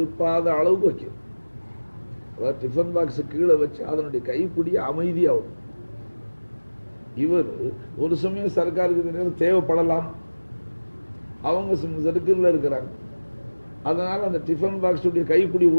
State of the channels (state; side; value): inverted; both; correlation -1.00